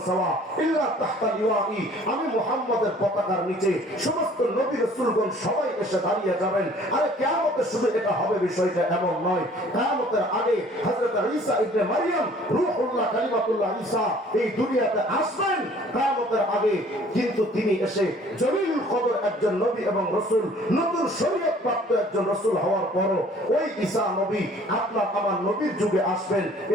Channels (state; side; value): normal; both; correlation 0.54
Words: সাওয়া ইল্লা তাহতা লিওয়াই। আমি মুহাম্মদের পতাকার নিচে সমস্ত নবী রাসূলগণ সবাই এসে দাঁড়িয়ে যাবেন। আরে কিয়ামতে শুধু এটা হবে বিষয়টা এমন নয়, কিয়ামতের আগে হযরত ঈসা ইবনে মারইয়াম রূহুল্লাহ কালিমাতুল্লাহ ঈসা এই দুনিয়াতে আসবেন কিয়ামতের আগে। কিন্তু তিনি এসে জলিলুল কদর একজন নবী এবং রাসূল, নতুন শরীয়ত প্রাপ্ত একজন রাসূল হওয়ার পরও ওই ঈসা নবী আপনার আমার নবীর যুগে আসবেন।